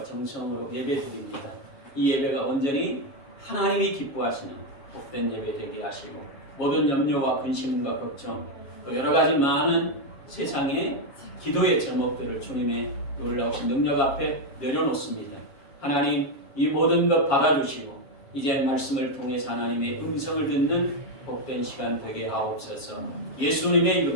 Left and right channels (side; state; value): right; late; 7.3 ms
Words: 정성으로 예배 드립니다. 이 예배가 온전히 하나님이 기뻐하시는 복된 예배 되게 하시고 모든 염려와 근심과 걱정 또 여러 가지 많은 세상의 기도의 제목들을 주님의 놀라우신 능력 앞에 내려놓습니다. 하나님 이 모든 것 받아주시고 이제 말씀을 통해서 하나님의 음성을 듣는 복된 시간 되게 하옵소서. 예수님의